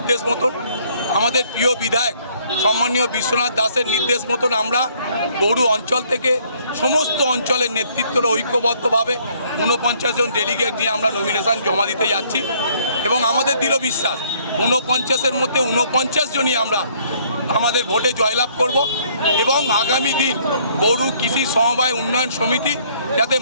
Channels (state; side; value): inverted; both; correlation -0.63